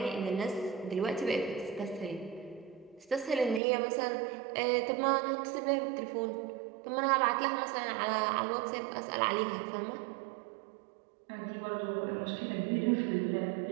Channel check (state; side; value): drops out; left; at 3.6 s